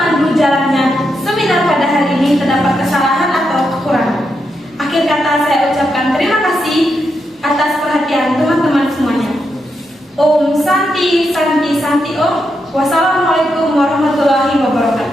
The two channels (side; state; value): both; normal; correlation 0.83